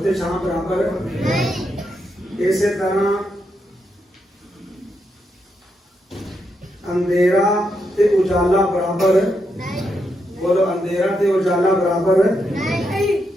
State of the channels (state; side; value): normal; both; correlation 0.82